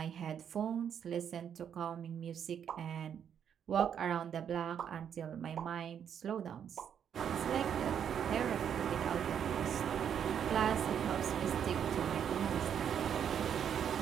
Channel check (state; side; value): quieter; left; 8.5 dB